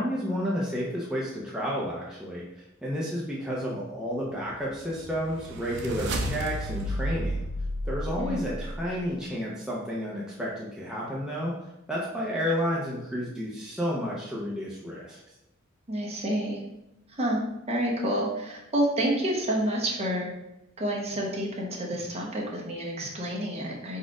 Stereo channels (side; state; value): both; normal; correlation 0.53